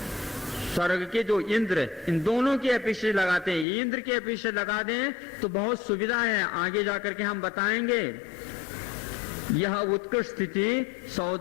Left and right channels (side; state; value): right; drops out; at 3.7 s